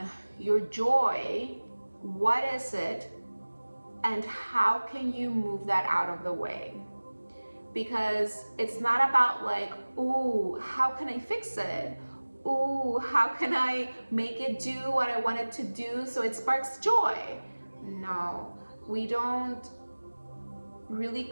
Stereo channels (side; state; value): both; inverted; correlation -1.00